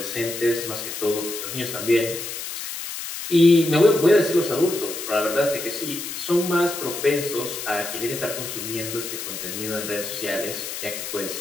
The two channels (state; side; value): noise; left; hiss, 7 dB below the sound